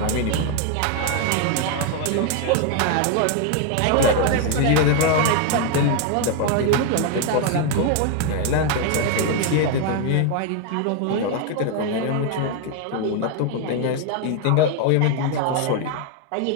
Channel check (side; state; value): both; different; correlation 0.01